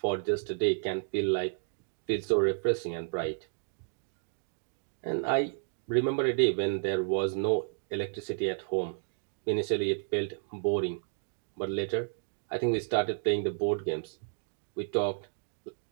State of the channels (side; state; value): left; silent; digital silence